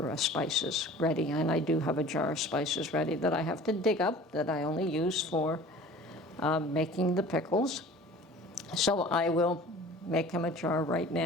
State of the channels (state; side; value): normal; both; correlation 0.44